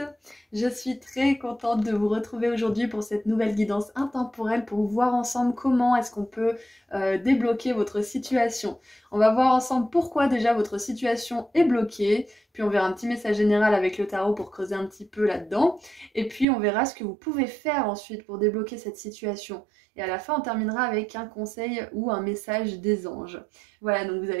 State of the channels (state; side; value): drops out; left; at 16.4 s